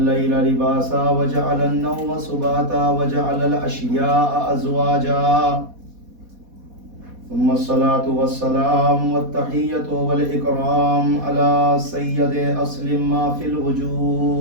لباسا وجعل النوم سباتا وجعل الأشياء أزواجا. ثم الصلاة والسلام والتحية والإكرام على سيد أصل ما في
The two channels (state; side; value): late; left; 4.1 ms